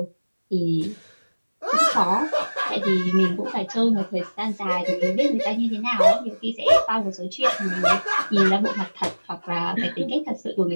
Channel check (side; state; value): both; inverted; correlation -1.00